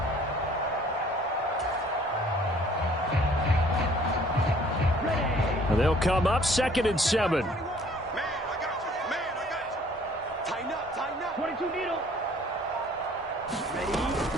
And they'll come up 2nd and 7.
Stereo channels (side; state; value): both; normal; correlation 0.56